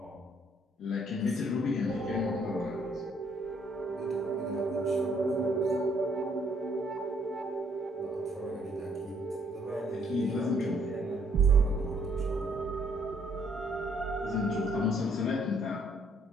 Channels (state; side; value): normal; both; correlation 0.67